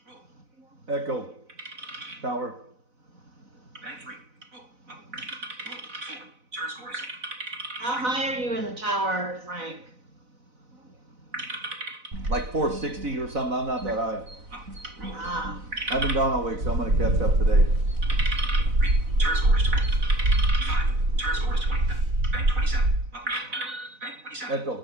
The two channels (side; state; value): left; late; 4.0 ms